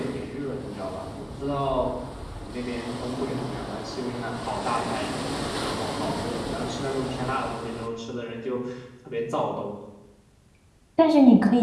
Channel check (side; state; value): both; identical; correlation 1.00